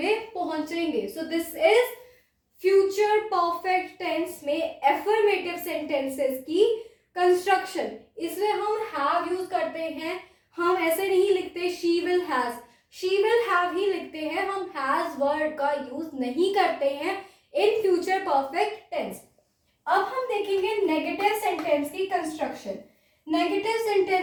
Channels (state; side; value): identical; both; correlation 1.00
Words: पहुंचेंगे. So this is future perfect tense में एफर्मेटिव सेंटेंसेस की कंस्ट्रक्शन. इसमें हम हैव यूज करते हैं. हम ऐसे नहीं लिखते she will has, she will have he लिखते हैं. हम हैज वर्ड का यूज नहीं करते हैं इन फ्यूचर परफेक्ट टेंस. अब हम देखेंगे नेगेटिव सेंटेंस की कंस्ट्रक्शन. नेगेटिव